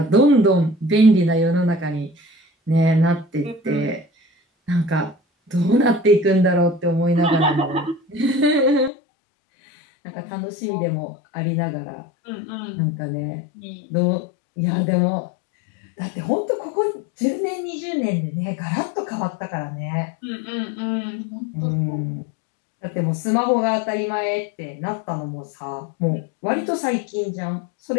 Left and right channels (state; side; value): drops out; right; at 8.9 s